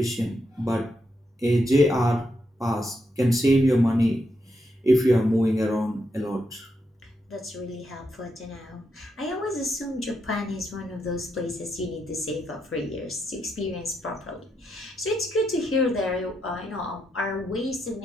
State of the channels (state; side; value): normal; both; correlation 0.82